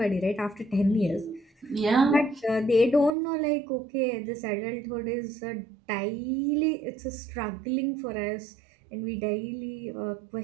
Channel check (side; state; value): left; drops out; at 3.1 s